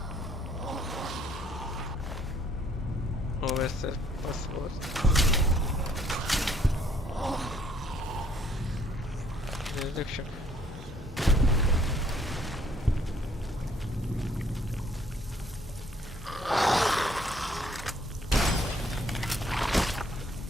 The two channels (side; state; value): both; normal; correlation 0.63